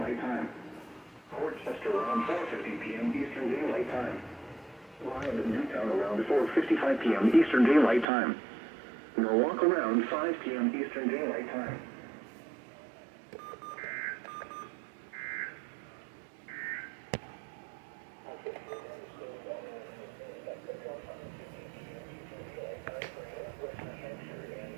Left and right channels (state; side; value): drops out; left; at 8.1 s